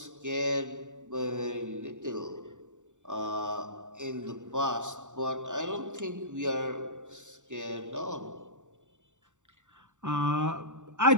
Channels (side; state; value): left; late; 0.85 ms